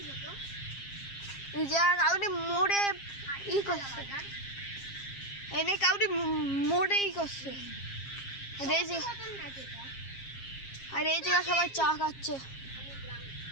হতো। এই যে কাউরি মোড়ে ই করছে, এনে কাউরি মোড়ে ই করছে। আর এই জায়গা সবাই চা খাচ্ছে।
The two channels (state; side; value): late; right; 7.4 ms